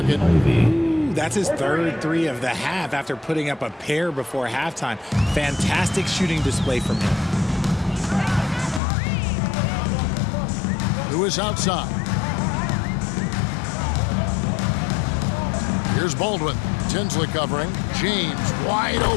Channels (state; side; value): drops out; right; at 8.8 s